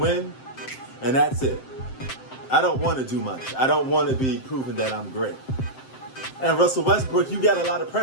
and that's it. I don't want to do much. I don't want to be proving that I'm great. And Russell Westbrook, you got a lot of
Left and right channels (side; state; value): right; late; 7.7 ms